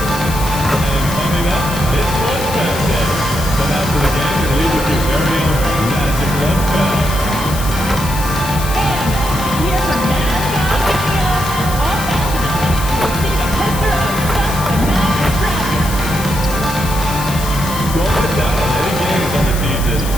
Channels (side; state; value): left; noise; hiss, 10 dB below the sound